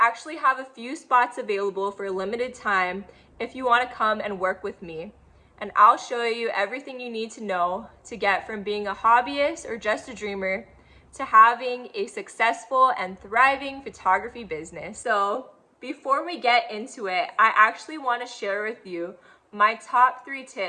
have a few spots available for a limited time if you want to come and work with me. And I'll show you everything you need to know to get from being a hobbyist or just a dreamer to having a successful and thriving photography business. So before we get into it, I actually want to share with you my top 3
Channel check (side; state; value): both; identical; correlation 1.00